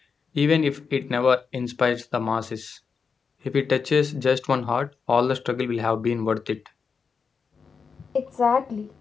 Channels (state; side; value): quieter; right; 5.6 dB